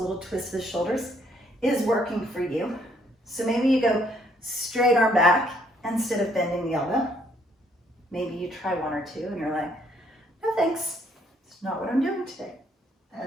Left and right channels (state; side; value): normal; both; correlation 0.67